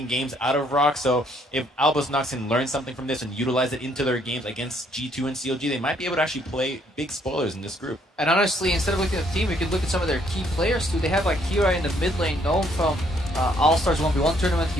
games out of ROX. So if Albus Nox can learn something from this and utilize it into their games against G2 and CLG, they might be able to actually play big spoilers in this group. And honestly, instead of looking at the team, we could look at some of their key players too. They have like Kira in the mid lane, known from All-Stars 1v1 tournament.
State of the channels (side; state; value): both; normal; correlation 0.67